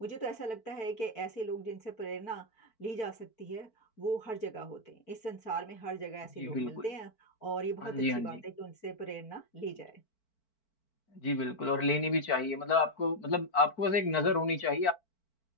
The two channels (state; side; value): late; right; 4.5 ms